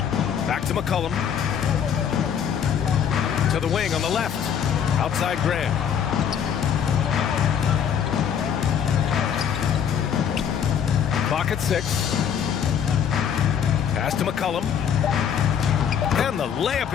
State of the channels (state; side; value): quieter; right; 8.2 dB